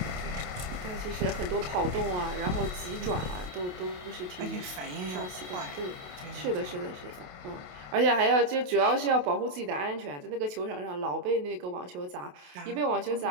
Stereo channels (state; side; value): late; left; 28 ms